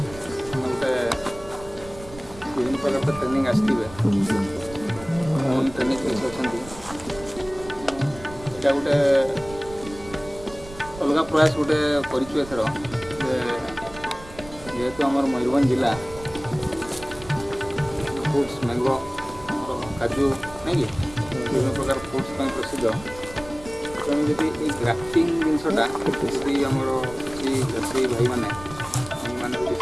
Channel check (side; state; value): right; noise; rumble, 16 dB below the sound